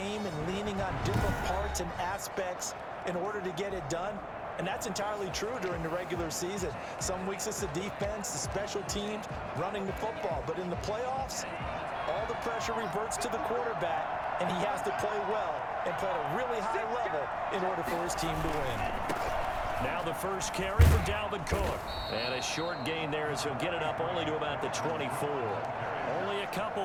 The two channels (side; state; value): both; identical; correlation 1.00